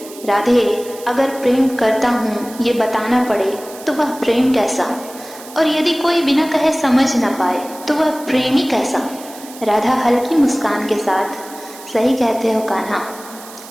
राधे, अगर प्रेम करता हूँ ये बताना पड़े, तो वह प्रेम कैसा? और यदि कोई बिना कहे समझ न पाए तो वह प्रेमी कैसा? राधा हल्की मुस्कान के साथ, सही कहते हो कान्हा,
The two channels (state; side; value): noise; right; hiss, 17 dB below the sound